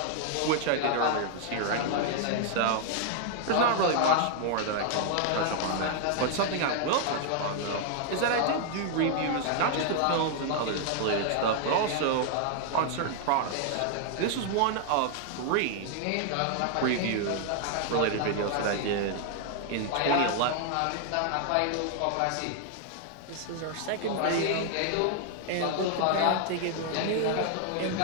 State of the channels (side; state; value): both; different; correlation 0.00